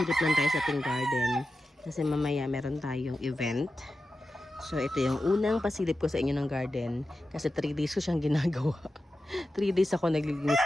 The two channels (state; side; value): normal; both; correlation 0.92